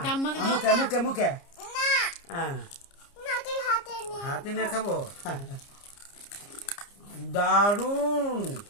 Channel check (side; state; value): right; late; 30 ms